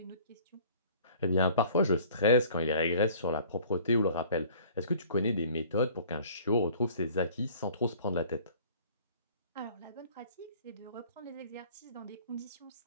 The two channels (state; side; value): inverted; both; correlation -0.50